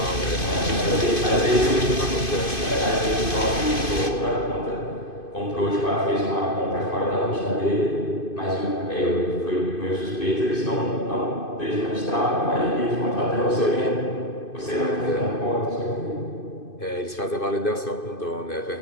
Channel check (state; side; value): late; right; 2.5 ms